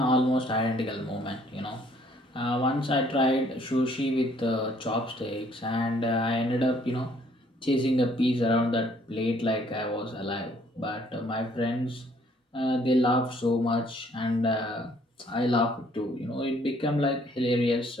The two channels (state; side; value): normal; both; correlation 0.63